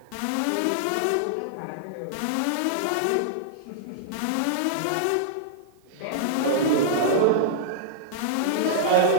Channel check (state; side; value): different; both; correlation -0.02